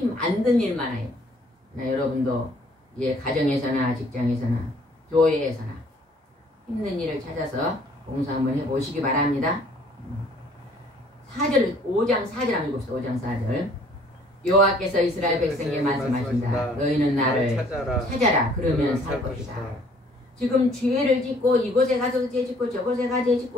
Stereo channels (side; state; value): both; normal; correlation 0.58